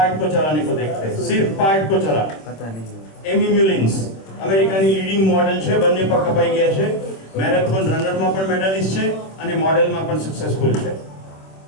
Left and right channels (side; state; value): right; late; 26 ms